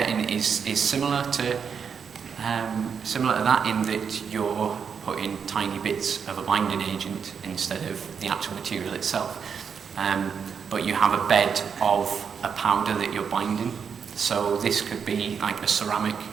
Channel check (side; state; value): left; quieter; 6.7 dB